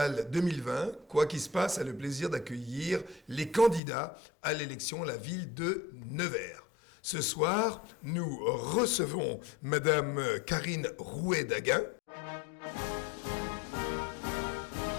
2020, Quoi qu'il se passe a le plaisir d'accueillir les candidats à l'élection à la ville de Nevers. Ce soir, nous recevons Madame Karine Rouet-Daguin.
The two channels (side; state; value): right; drops out; at 3.8 s